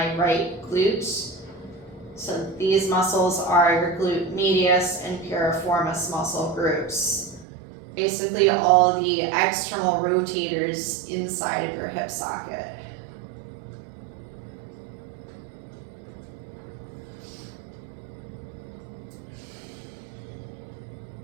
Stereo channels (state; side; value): drops out; left; at 7.5 s